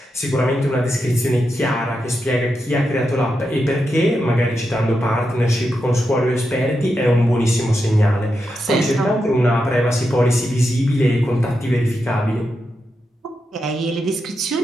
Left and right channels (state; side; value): normal; both; correlation 0.86